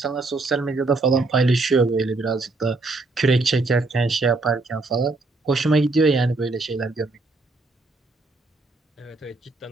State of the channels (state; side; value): quieter; left; 3.3 dB